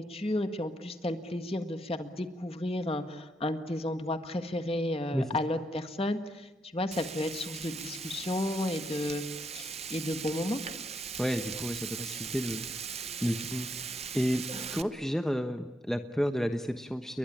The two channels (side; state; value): both; normal; correlation 0.78